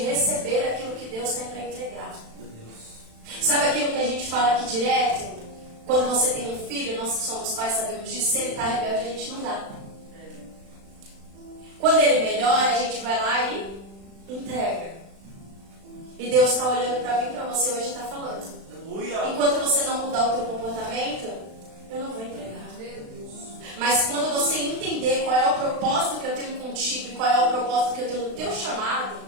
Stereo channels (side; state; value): left; late; 36 ms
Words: receber aquilo que Deus tem para entregar. Sabe aquilo que a gente fala aqui direto? Quando você tem um filho, nós que somos pais sabemos disso, se ele está rebelde, a gente não dá. Quando ele melhora, a gente vai lá e entrega. E Deus está olhando para mim e para você hoje e está falando: Aleluia. enquanto você não mudar o teu comportamento, eu não vou entregar. Mas quando você entender qual é o propósito que eu tenho contigo e qual é o propósito que eu tenho no teu chamado,